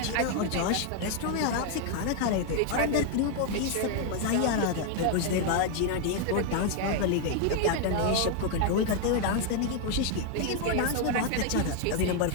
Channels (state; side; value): different; both; correlation 0.00